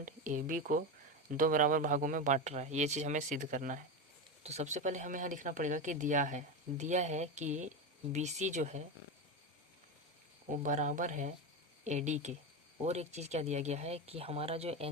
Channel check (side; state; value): both; normal; correlation 0.17